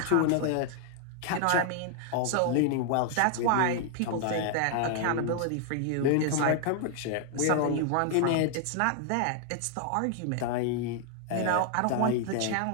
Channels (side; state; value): both; different; correlation 0.00